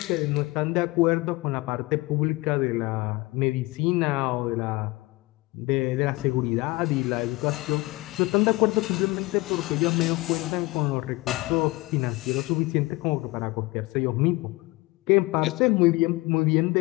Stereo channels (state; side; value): quieter; right; 22.1 dB